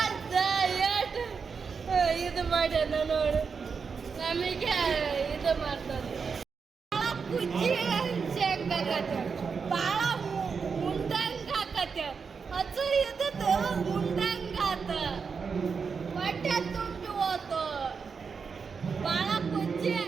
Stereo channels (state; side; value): quieter; left; 5.6 dB